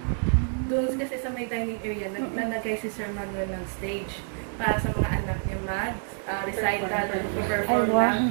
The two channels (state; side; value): silent; left; 60 dB below the other